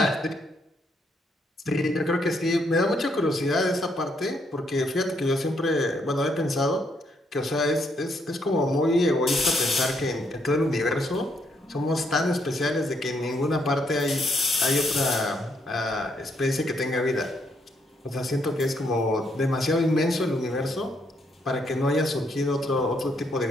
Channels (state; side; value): normal; both; correlation 0.74